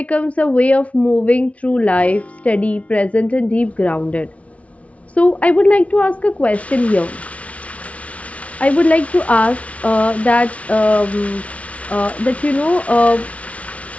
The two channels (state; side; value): late; right; 0.065 ms